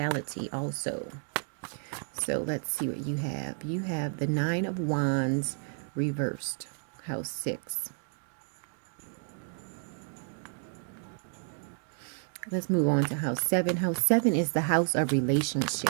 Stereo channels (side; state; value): left; silent; 57 dB below the other